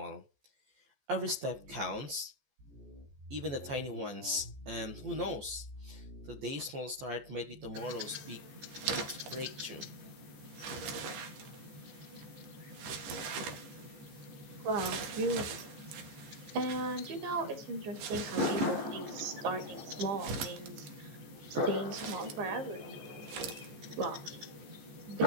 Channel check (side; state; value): left; late; 14 ms